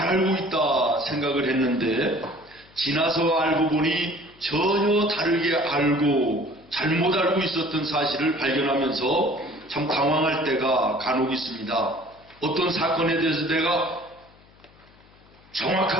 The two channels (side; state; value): left; noise; hum, 28 dB below the sound